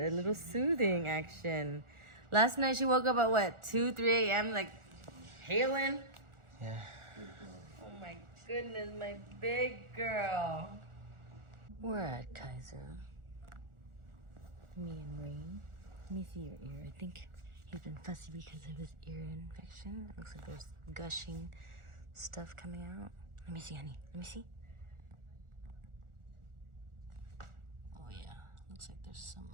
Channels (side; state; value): left; late; 1.4 ms